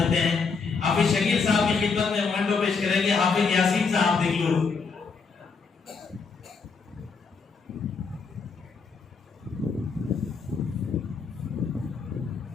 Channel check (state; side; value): quieter; right; 5.0 dB